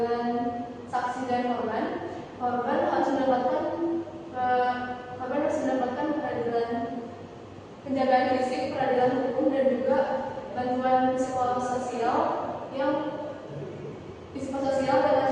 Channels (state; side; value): identical; both; correlation 1.00